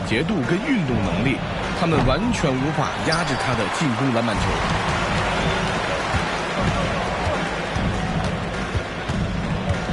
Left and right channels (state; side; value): identical; both; correlation 1.00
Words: 捷度跟运动能力，他们完全无法压制他的进攻篮板球。